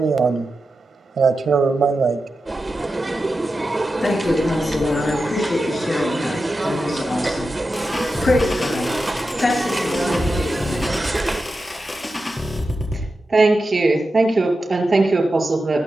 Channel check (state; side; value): normal; both; correlation 0.91